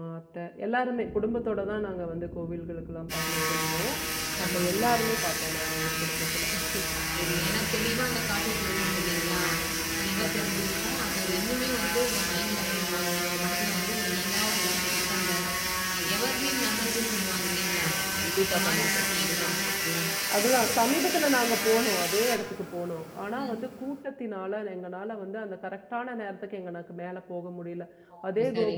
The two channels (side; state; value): both; identical; correlation 1.00